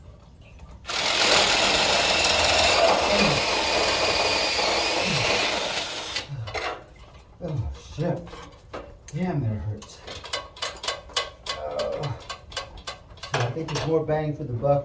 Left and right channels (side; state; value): both; identical; correlation 1.00